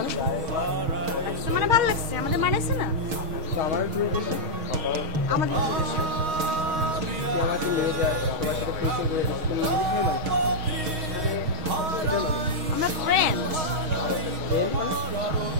লাগছে মানে ভালো লাগছে, আমাদের মানাইছে না? তো আমার আমাদের তুই আমাকে নিয়ে যা, তোমার সাথে ফেসে করে তুমি আমরা ফ্রেন্ড।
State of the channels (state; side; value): late; left; 6.3 ms